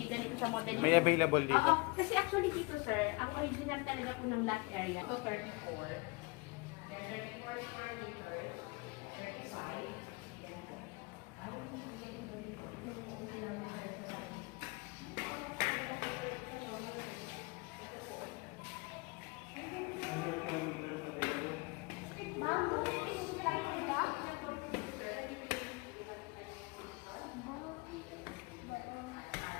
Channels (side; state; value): right; quieter; 27.1 dB